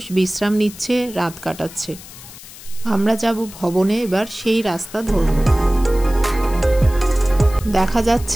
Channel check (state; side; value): noise; left; hiss, 17 dB below the sound